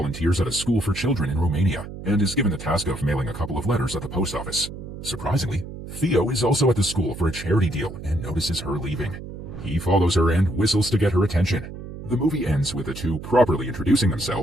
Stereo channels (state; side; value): noise; right; hum, 11 dB below the sound